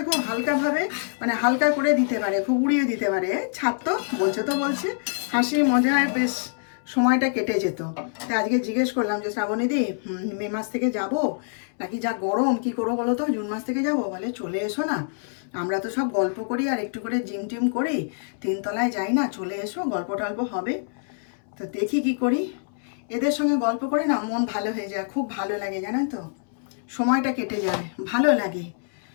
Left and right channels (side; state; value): right; silent; 61 dB below the other